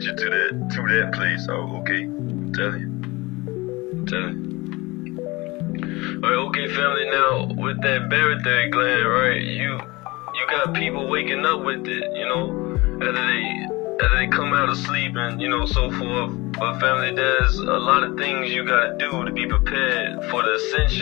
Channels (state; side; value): quieter; right; 22.6 dB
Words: you to that place. Oh, okay. I'm telling you. Alright, okay, family. Now with that barytheric gland, right? You got people waking up with it, after they come out of sleep and so forth. But family, there's a lot of things you gotta do to be prepared for the